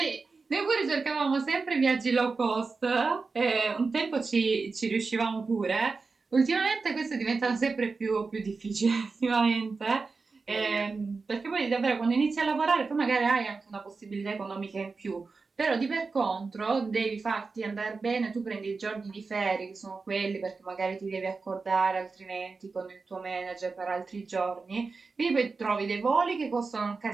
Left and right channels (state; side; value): quieter; left; 4.3 dB